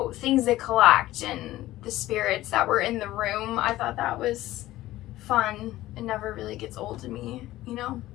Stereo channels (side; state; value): right; quieter; 15.9 dB